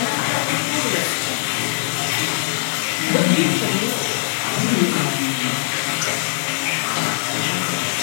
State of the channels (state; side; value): silent; right; digital silence